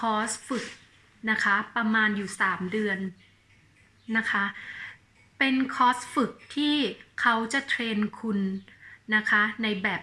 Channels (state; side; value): identical; both; correlation 1.00